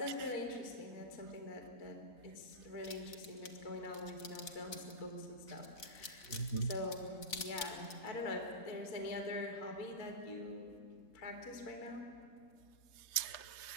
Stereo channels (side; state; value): right; late; 4.1 ms